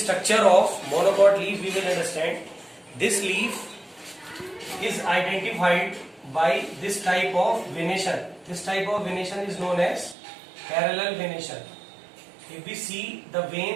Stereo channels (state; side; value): drops out; left; at 10.2 s